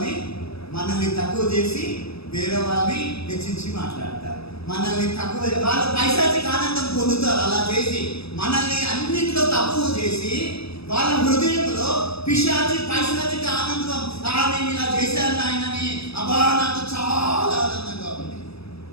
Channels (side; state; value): right; late; 0.78 ms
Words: మనల్ని తక్కువ చేసి వేరే వాళ్ళని హెచ్చించి మాట్లాడతారు. మనల్ని తక్కువ, వాళ్ళు పైశాచిక ఆనందం పొందుతారు అలా చేసి. మనల్ని అన్నింటిలో తక్కువ చేసి వాళ్ళ హృదయంలో పైశాచిక ఆనందం, నేను ఇలా చేశాను ఆయనని, అబ్బా నాకు చాలా ఆనందంగా ఉంది.